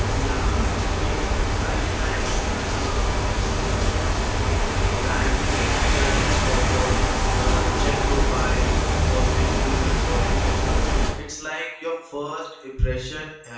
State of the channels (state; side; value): identical; both; correlation 1.00